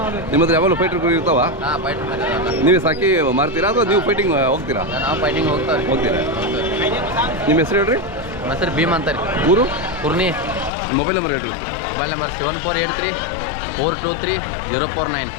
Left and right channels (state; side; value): drops out; right; at 10.7 s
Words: ನಿಮ್ಮ ಹತ್ರ ಯಾವಾಗಲೂ ಫೈಟರ್ ಕುರಿ ಇರ್ತಾವ ಹಾಂ ಫೈಟರ್ ಮರಿ ನೀವೇ ಸಾಕಿ ಮಾರ್ತೀರಾ ಅಥವಾ ನೀವು ಫೈಟಿಂಗ್ ಹೋಗ್ತೀರಾ ನಾವು ಫೈಟಿಂಗ್ ಹೋಗ್ತಾವ್ರಿ ಹೋಗ್ತೀರಾ ನಿಮ್ಮ ಹೆಸರು ಹೇಳ್ರಿ ನಮ್ಮ ಹೆಸರು ಭೀಮ್ ಅಂತಾರೆ ಊರು ಕುರ್ನಿ ಮೊಬೈಲ್ ನಂಬರ್ ಹೇಳ್ರಿ ಮೊಬೈಲ್ ನಂಬರ್ 7483 423